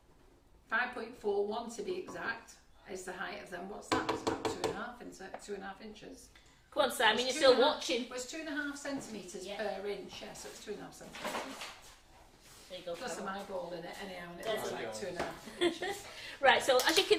5.41 to be exact, is the height of them. What's that? It's about 2.5 inches. Come on, Simon, you're still watching. Well, it's 2.5 centimetres Yeah. per inch, yeah, so it's 2.5 centimetres. There you go. Plus Carol. an eyeball in it anyhow, and it There's looks a- like 2.5 inches. Right, so as you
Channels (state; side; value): identical; both; correlation 1.00